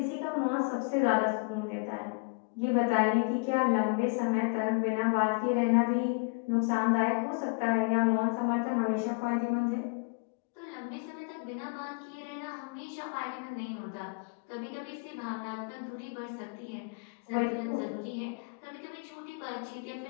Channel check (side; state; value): right; quieter; 33.6 dB